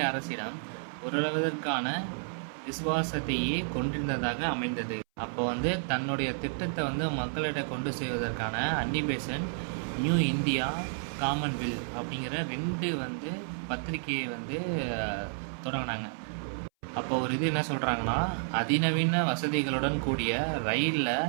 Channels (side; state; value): left; silent; 57 dB below the other